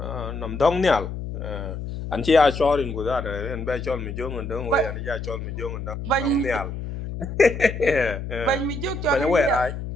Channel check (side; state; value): left; noise; hum, 7 dB below the sound